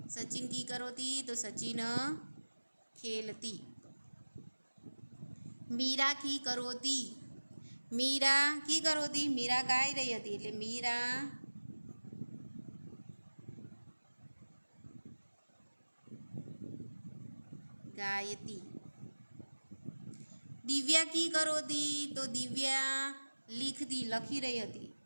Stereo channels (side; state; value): both; inverted; correlation -1.00